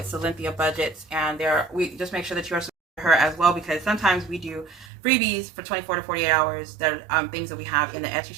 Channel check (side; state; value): left; drops out; at 4.9 s